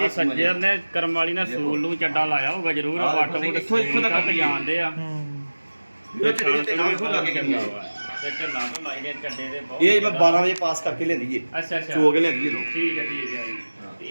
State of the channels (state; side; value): inverted; both; correlation -1.00